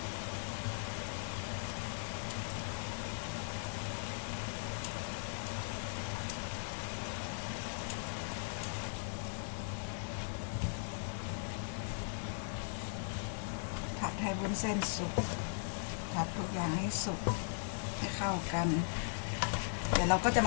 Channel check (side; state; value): right; silent; 52 dB below the other